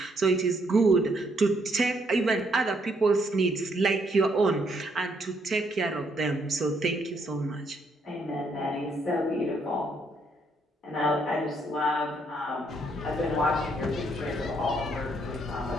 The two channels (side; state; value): both; normal; correlation 0.72